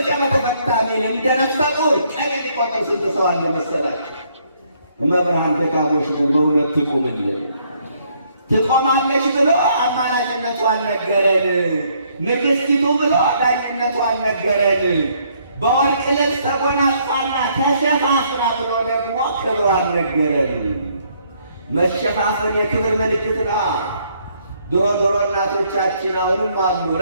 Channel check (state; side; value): inverted; both; correlation -0.68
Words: በተፈታ ሚል እንደ ነፍሰ ጡር ቀን የሚቆጥር ስንት ሰው አለ መሰላችሁ? መብርሃን ደካሞች ነን፣ በእውነት ትቁምልን። ትቆማለች ብሎ አማላጅነቷን ነገረን። ንግሥቲቱ ብሎ ዳኝነቷን ነገረን። በወርቅ ልብስ ተጎናጽፋና ተሸፋፍና ብሎ ደግሞ ክብሯን ነገረን። መሸፋፈን የክብር ምልክት ነው። ድሮ እናቶቻችን አሁንም አሉ